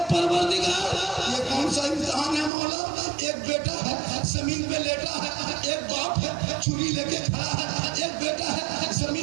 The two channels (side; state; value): left; drops out; at 2.5 s